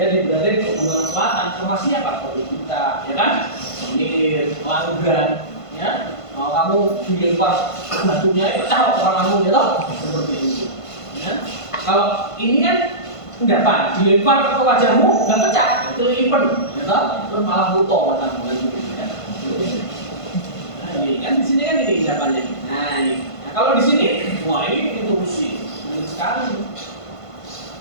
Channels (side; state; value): right; late; 1.5 ms